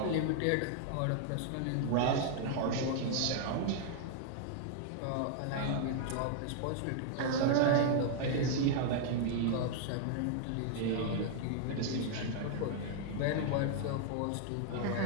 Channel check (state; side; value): different; both; correlation 0.00